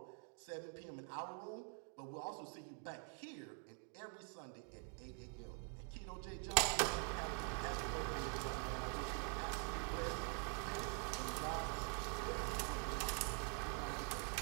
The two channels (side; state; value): left; quieter; 39.0 dB